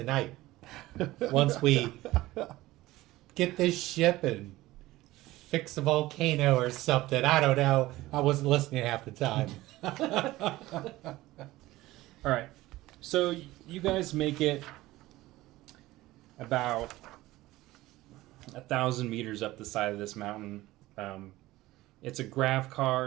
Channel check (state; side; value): quieter; left; 17.6 dB